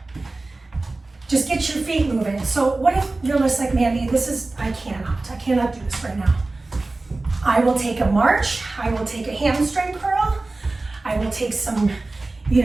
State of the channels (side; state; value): left; quieter; 3.2 dB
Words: Just get your feet moving. So what if you're just like, Mandy, I cannot do this right now. I will take a march, I will take a hamstring curl, I will take some,